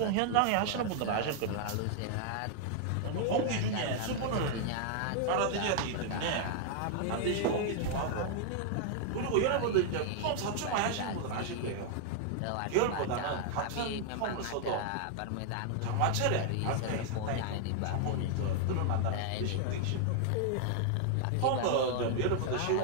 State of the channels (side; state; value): both; different; correlation 0.00